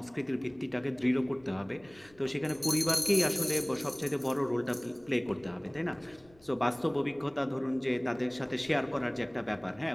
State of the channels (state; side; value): noise; left; rumble, 28 dB below the sound